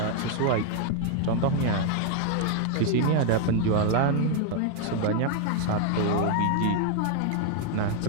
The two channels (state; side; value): different; both; correlation 0.00